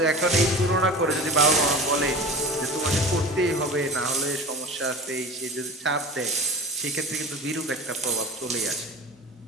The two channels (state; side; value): normal; both; correlation 0.35